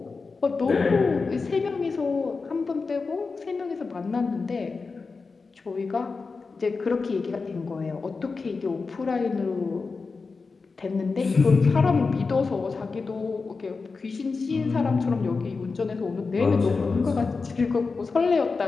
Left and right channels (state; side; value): quieter; right; 4.4 dB